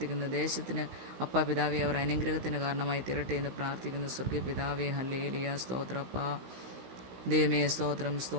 ദേശത്തിന് അപ്പാ പിതാവെ അവർ അനുഗ്രഹത്തിന് കാരണമായി തീരട്ടെ എന്ന് പ്രാർത്ഥിക്കുന്ന സ്വർഗ്ഗീയ പിതാവേ, ഹല്ലേലൂയ. സ്തോത്രം അപ്പാ. ദൈവമേ, സ്തോത്രം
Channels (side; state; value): left; late; 16 ms